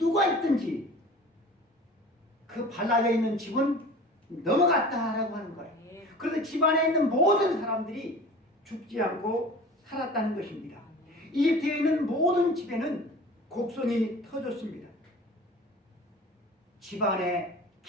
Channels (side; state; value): both; normal; correlation 0.41